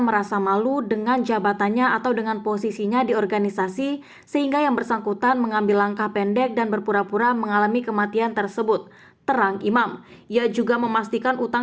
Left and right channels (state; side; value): identical; both; correlation 1.00